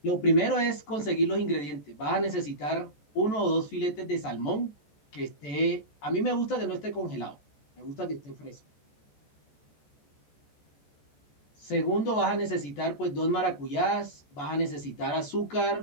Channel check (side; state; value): right; late; 14 ms